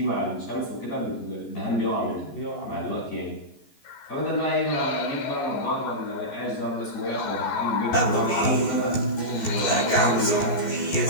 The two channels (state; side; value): late; right; 14 ms